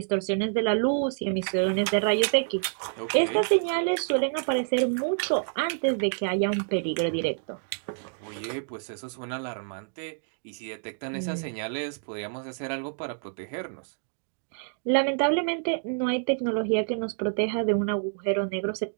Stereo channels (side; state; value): left; silent; digital silence